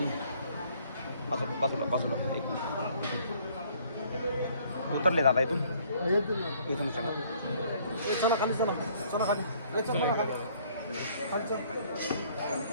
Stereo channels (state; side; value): inverted; both; correlation -0.60